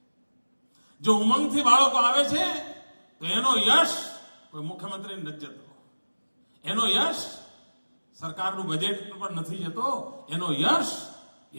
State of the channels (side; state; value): both; inverted; correlation -1.00